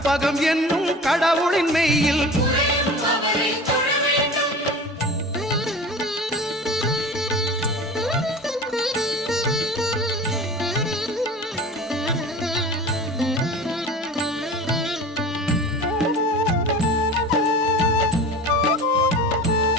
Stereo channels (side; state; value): both; normal; correlation 0.36